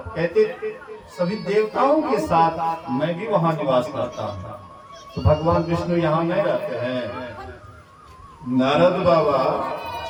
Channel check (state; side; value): identical; both; correlation 1.00